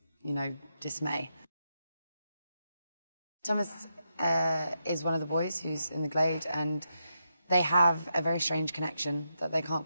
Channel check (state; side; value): inverted; both; correlation -0.84